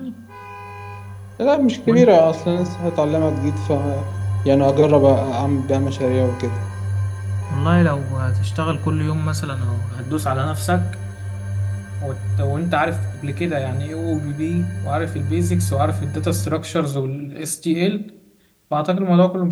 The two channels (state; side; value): identical; both; correlation 1.00